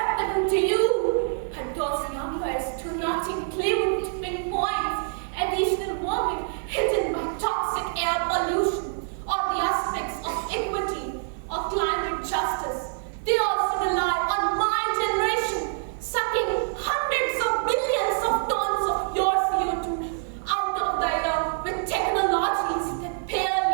to you, but those numbers do not include tipping points, additional warming hidden by toxic air pollution, or the aspects of equity or climate justice. They also rely on my generation, sucking hundreds of billions of tons of your CO2 out of the air with technologies that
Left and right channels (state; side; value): silent; left; digital silence